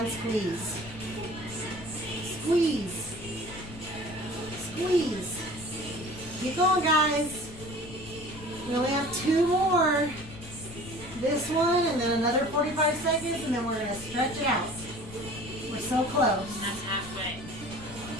squeeze. Squeeze. Squeeze. Keep going, guys. We only have 2 more. This one and then another 45 seconds and then we're going to stretch it out. We're so close. that's halfway.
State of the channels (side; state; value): left; noise; rumble, 15 dB below the sound